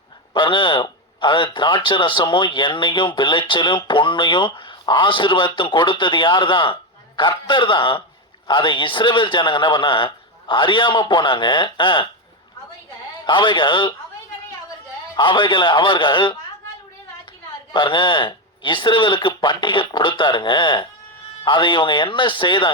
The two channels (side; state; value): both; normal; correlation 0.11